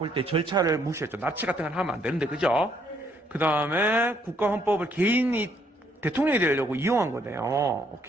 때 절차를 무시했죠. 납치 같은 건 하면 안 되는데, 그죠? 그 다음에 국가 헌법을 개인이 대통령이 되려고 이용한 거네요.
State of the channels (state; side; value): normal; both; correlation 0.69